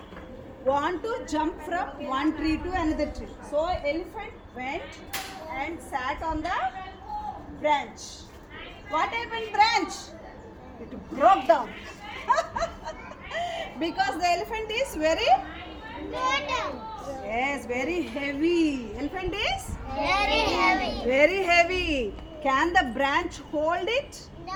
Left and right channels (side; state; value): both; identical; correlation 1.00